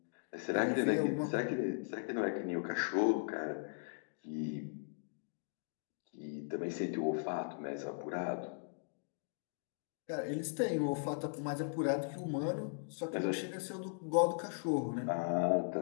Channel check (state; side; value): silent; right; digital silence